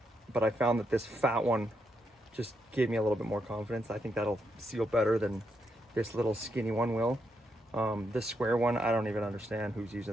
but I found that this fat one just gave me a little bit more confidence. I think that'll seal better than this little skinny one will. This square one, I don't even understand who's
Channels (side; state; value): both; normal; correlation 0.81